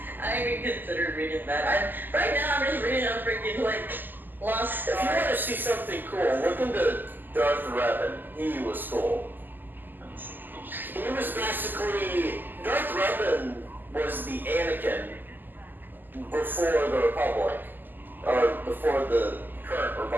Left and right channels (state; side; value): late; left; 0.089 ms